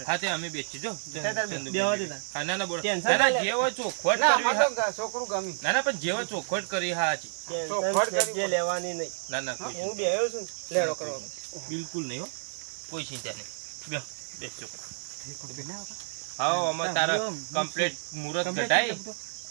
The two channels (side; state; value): left; silent; digital silence